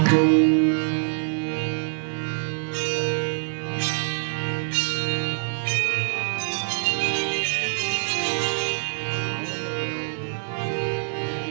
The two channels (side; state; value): left; silent; 62 dB below the other